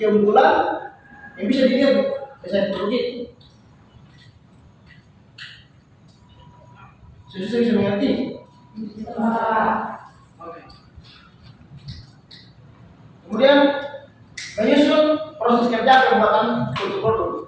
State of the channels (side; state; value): both; identical; correlation 1.00